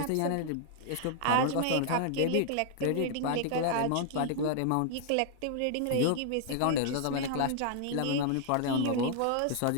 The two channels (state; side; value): different; both; correlation 0.00